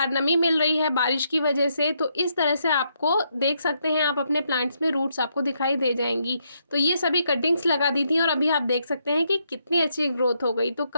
नमी मिल रही है बारिश की वजह से, तो इस तरह से आपको देख सकते हैं, आप अपने प्लांट्स में रूट्स आपको दिखाई दे जाएंगी। तो ये सभी कटिंग्स लगा दी थी और अभी आप देख सकते हैं कि कितनी अच्छी ग्रोथ हो गई। तो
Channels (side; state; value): both; inverted; correlation -0.77